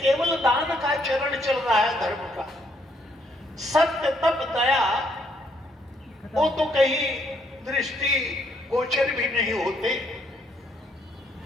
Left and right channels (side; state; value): both; normal; correlation 0.71